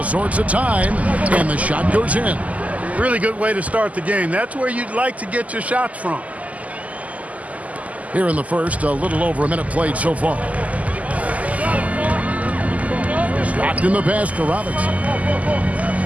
sorts of time, and the shot goes in. Really good way to start the game. That's where you'd like to get your shots from. Here in the first, a little over a minute played so far. Stockton the pass to Robinson.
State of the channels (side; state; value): left; late; 0.073 ms